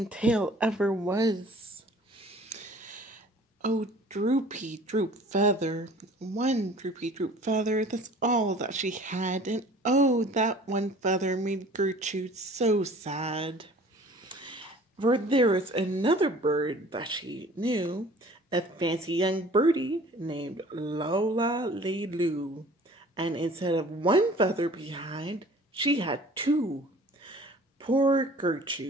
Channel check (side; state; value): both; normal; correlation 0.49